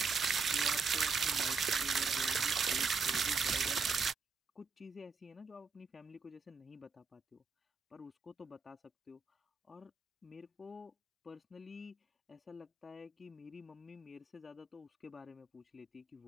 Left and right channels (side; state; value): left; quieter; 4.8 dB